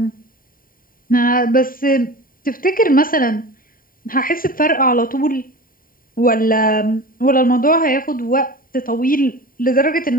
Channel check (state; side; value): late; right; 0.41 ms